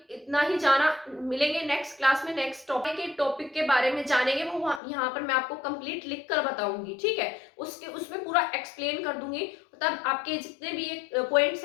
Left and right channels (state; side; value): drops out; right; at 4.8 s